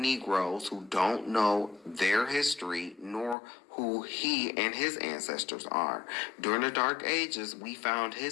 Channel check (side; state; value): right; drops out; at 3.4 s